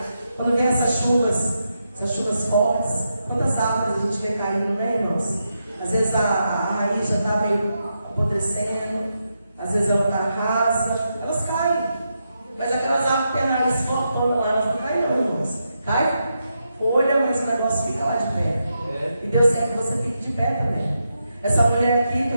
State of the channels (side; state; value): both; inverted; correlation -0.85